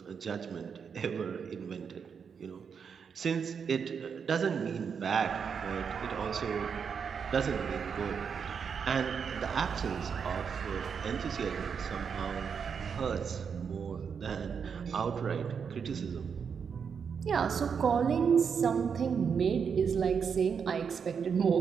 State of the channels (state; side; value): quieter; left; 6.6 dB